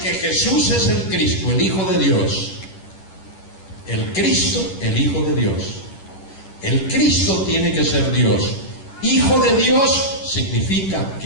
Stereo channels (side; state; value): right; late; 10 ms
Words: que Jesús es el Cristo, el Hijo de Dios. El Cristo, el Hijo de Dios. El Cristo tiene que ser Dios. Hijo de Dios significa